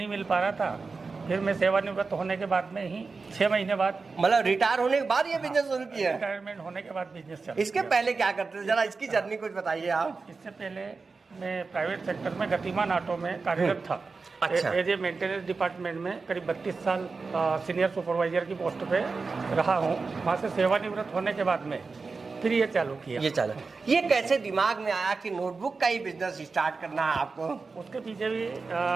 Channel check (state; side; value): quieter; left; 4.3 dB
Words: मिल पा रहा था। फिर मैं सेवानिवृत्त होने के बाद में ही 6 महीने बाद, मतलब रिटायर होने के बाद ये बिजनेस शुरू किया? रिटायरमेंट होने के बाद बिजनेस चला। इसके पहले क्या करते थे, जरा इसकी जर्नी कुछ बताइए आप। इससे पहले मैं प्राइवेट सेक्टर में गतिमान ऑटो में कार्यरत था। अच्छा। एज ए मेंटेनेंस डिपार्टमेंट में करीब 32 साल सीनियर सुपरवाइजर की पोस्ट पे रहा हूँ। वहाँ से सेवानिवृत्त होने के बाद में फिर ये चालू किया। ये कैसे दिमाग में आया कि नोटबुक का ही बिजनेस स्टार्ट करना है आपको? उसके पीछे भी